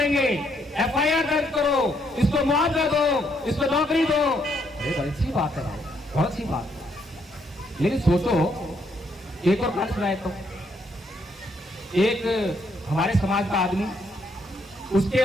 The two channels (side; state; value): both; normal; correlation 0.73